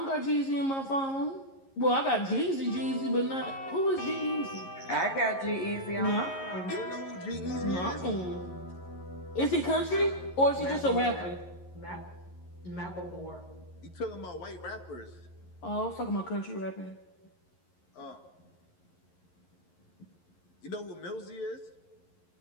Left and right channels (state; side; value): late; right; 11 ms